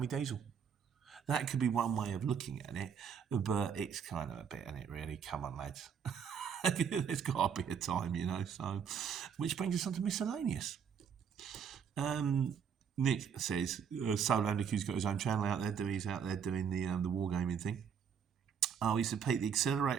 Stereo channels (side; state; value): left; quieter; 7.4 dB